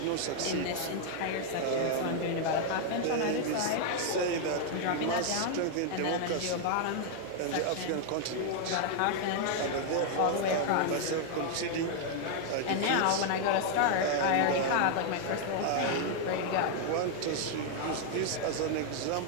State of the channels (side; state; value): both; different; correlation 0.00